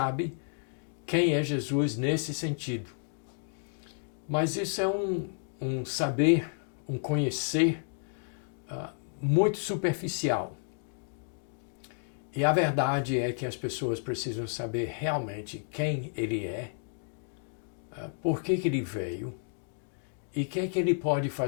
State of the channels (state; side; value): silent; right; digital silence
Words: quem é Jesus nesse sentido. Mas isso é um saber, um conhecer muito superficial. E a verdade é que as pessoas precisam saber realmente quem ele é, por que ele veio, e o que ele pode